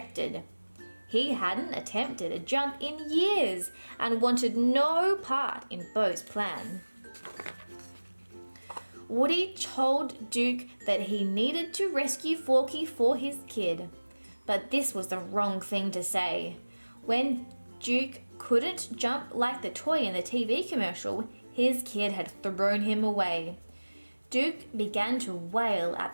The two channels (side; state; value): both; inverted; correlation -1.00